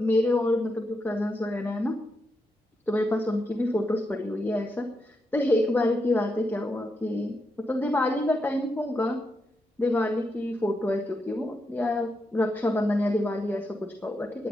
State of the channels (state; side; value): normal; both; correlation 0.84